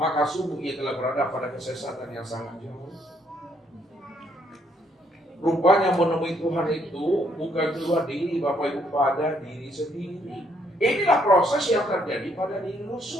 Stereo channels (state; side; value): normal; both; correlation 0.70